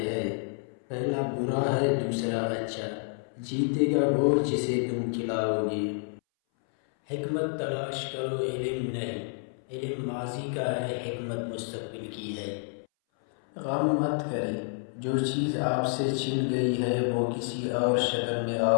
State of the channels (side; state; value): right; silent; 58 dB below the other